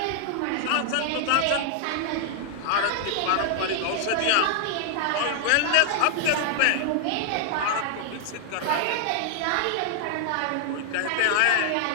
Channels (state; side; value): different; both; correlation 0.00